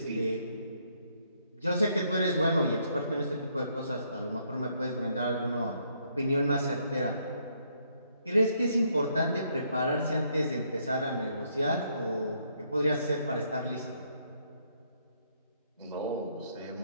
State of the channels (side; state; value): both; inverted; correlation -0.72